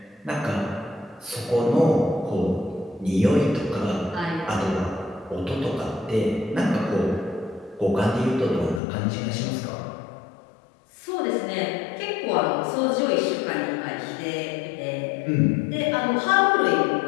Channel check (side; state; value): right; drops out; at 8.8 s